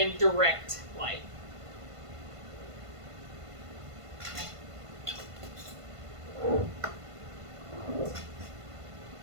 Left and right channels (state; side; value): late; left; 1.5 ms